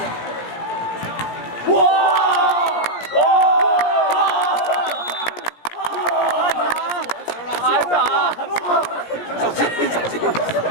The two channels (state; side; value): late; right; 17 ms